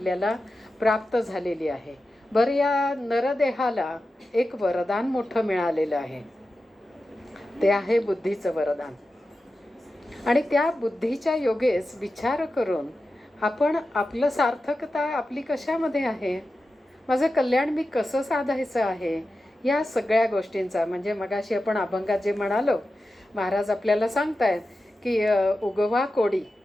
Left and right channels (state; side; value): normal; both; correlation 0.92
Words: प्राप्त झालेली आहे. बरं, या नरदेहाला एक वरदान मोठं मिळालेलं आहे, ते आहे बुद्धीचं वरदान. आणि त्या बुद्धीच्या योगेस विचार करून आपण आपलं सार्थकता आपली कशामध्ये आहे, माझं कल्याण मी कसं साधायचं आहे, या सगळ्या गोष्टींचा म्हणजे मगाशी आपण अभंगात जे म्हणालो, महाराज आपल्याला सांगतायत की उगवा कोडी.